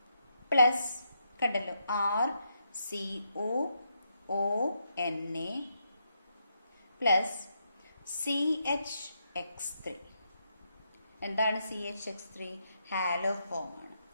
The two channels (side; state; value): both; inverted; correlation -0.80